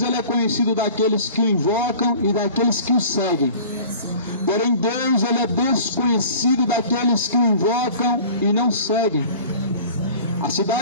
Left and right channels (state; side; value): inverted; both; correlation -0.44